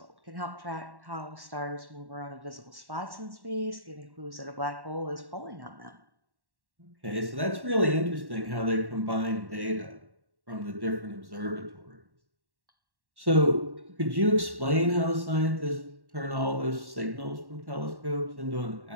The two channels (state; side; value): late; left; 1.1 ms